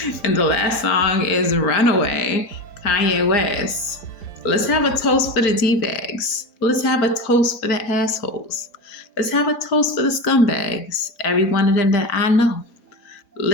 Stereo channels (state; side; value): late; right; 4.9 ms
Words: And the last song is Runaway, Kanye West. Let's have a toast for the D-bags. Let's have a toast for the assholes. Let's have a toast for the scumbags, every one of them that I know.